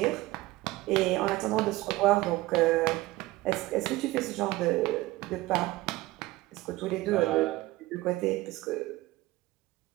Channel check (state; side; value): quieter; left; 18.7 dB